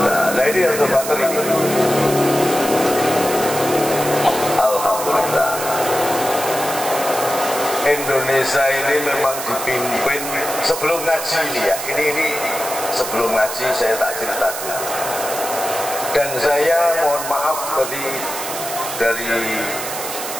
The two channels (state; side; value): noise; right; hiss, 7 dB below the sound